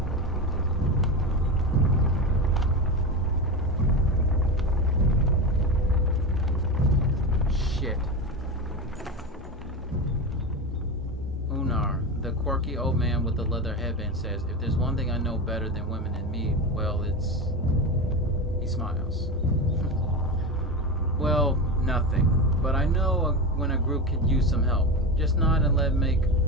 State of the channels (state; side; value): normal; both; correlation 0.20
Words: Shit. Unar, the quirky old man with the leather headband, says, if there's one thing I know better than women and me, well, it's... He smiles. Well, nothing. But I know when a group could use some help. Just nod and let